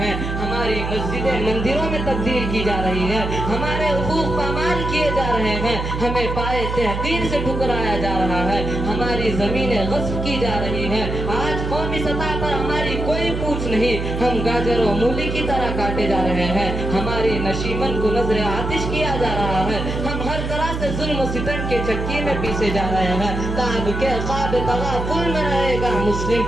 ہماری مسجدیں مندروں میں تبدیل کی جا رہی ہیں، ہمارے حقوق پامال کیے جا رہے ہیں، ہمیں پائے تحقیر سے ٹھکرایا جا رہا ہے، ہماری زمینیں غصب کی جا رہی ہیں۔ آج قومی سطح پر ہماری کوئی پوچھ نہیں، ہم گاجر و مولی کی طرح کاٹے جا رہے ہیں، ہماری نشیمن کو نظر آتش کیا جا رہا ہے، ہم ہر طرح سے ظلم و ستم کے چکی میں پیسے جا رہے ہیں۔ تاب کے خواب تغافل میں رہے گا مسلم،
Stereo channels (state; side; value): noise; right; hum, 4 dB below the sound